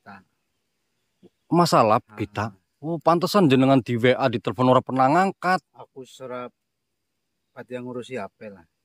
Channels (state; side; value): identical; both; correlation 1.00